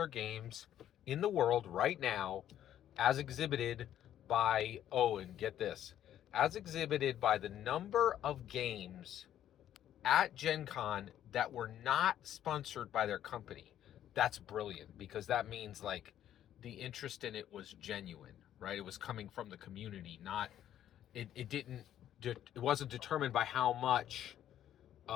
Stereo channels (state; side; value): quieter; right; 11.2 dB